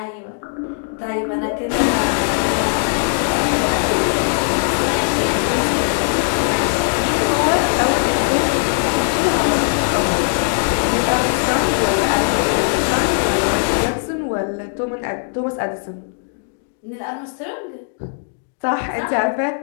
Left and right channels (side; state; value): right; silent; digital silence